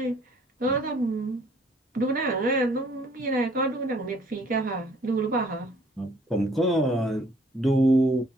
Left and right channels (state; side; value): normal; both; correlation 0.60